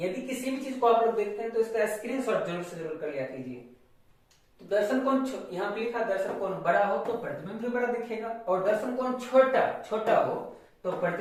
किसी भी चीज को आप लोग देखते हैं तो इसका स्क्रीनशॉट जरूर से जरूर कर लिया कीजिए। तो दर्शन कोण यहाँ पे लिखा, दर्शन कोण बड़ा हो तो प्रतिबिंब भी बड़ा दिखेगा, और दर्शन कोण छोटा हो तो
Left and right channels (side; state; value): both; identical; correlation 1.00